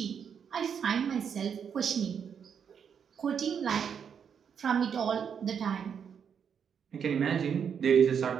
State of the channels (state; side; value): quieter; left; 7.4 dB